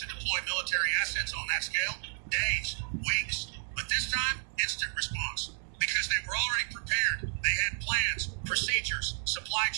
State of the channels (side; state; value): left; silent; digital silence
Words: deploy military assets on that scale? Days, weeks. But this time, instant response. Because they were already prepared. They had plans, procedures, supply